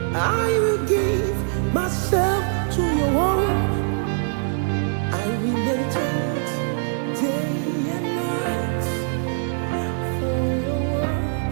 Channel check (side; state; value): left; silent; digital silence